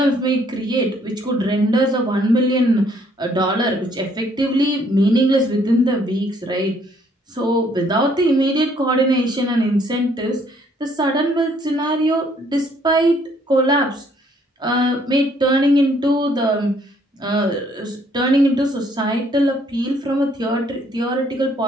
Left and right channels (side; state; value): both; normal; correlation 0.65